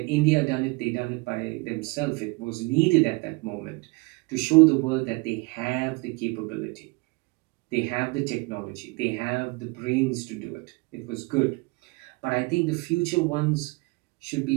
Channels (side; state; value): left; quieter; 26.7 dB